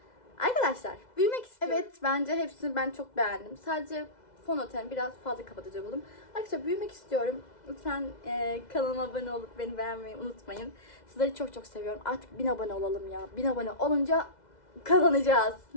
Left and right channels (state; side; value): late; right; 2.0 ms